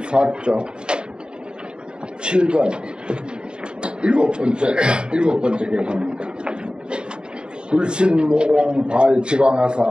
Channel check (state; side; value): late; left; 0.050 ms